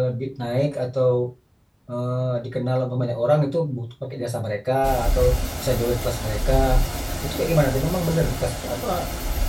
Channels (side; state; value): both; identical; correlation 1.00